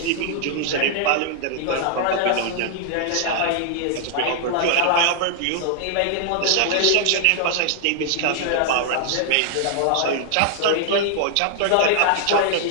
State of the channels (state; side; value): different; both; correlation 0.00